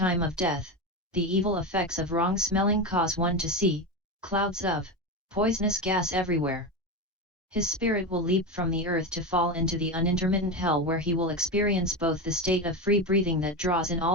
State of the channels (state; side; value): normal; both; correlation 0.18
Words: of death, the evil effects of wrong smelling cause one to see clouds of poisonous gas everywhere. His spirit will leap from the earth to fall into the unintermittent hell, where he will experience both the state of free breathing that draws in